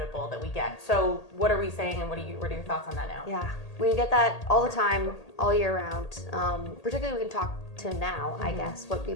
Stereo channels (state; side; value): late; right; 1.8 ms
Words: that we get. So what are we saying, and what are your thoughts on that now? Yeah, we get that all the time, all year round. Particularly we can talk to now, I guess, what